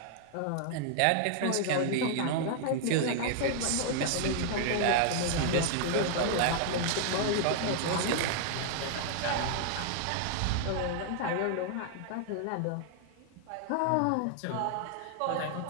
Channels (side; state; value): both; different; correlation 0.00